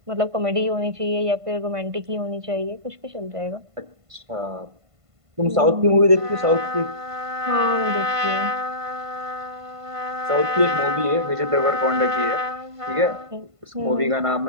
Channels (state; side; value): late; left; 1.5 ms